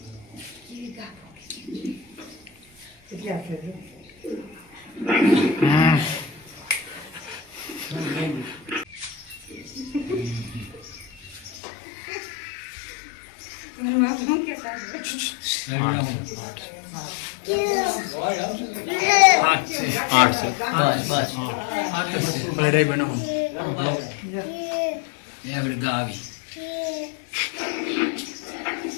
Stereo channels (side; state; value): right; drops out; at 11.6 s